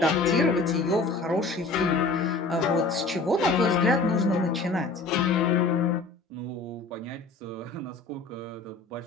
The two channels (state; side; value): quieter; right; 3.7 dB